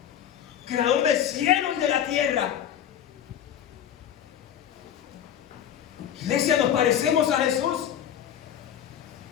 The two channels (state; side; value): quieter; right; 9.8 dB